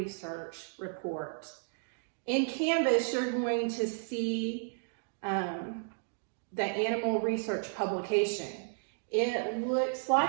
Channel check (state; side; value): silent; left; digital silence